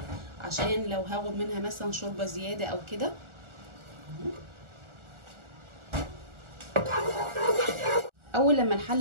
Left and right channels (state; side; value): late; left; 1.4 ms